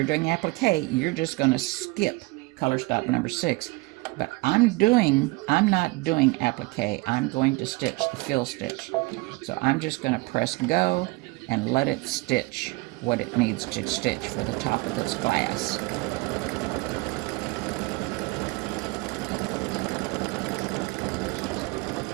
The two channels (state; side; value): quieter; left; 24.2 dB